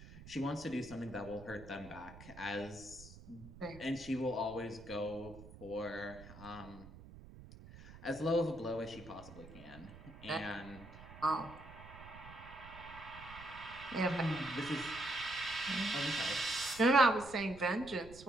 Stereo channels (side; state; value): right; noise; rumble, 16 dB below the sound